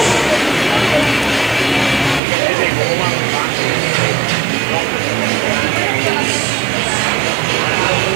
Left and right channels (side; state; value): left; drops out; at 2.2 s